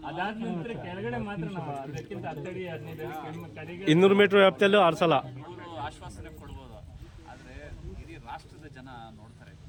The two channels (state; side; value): identical; both; correlation 1.00